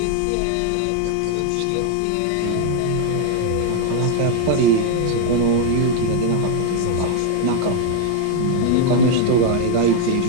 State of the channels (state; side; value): different; both; correlation 0.00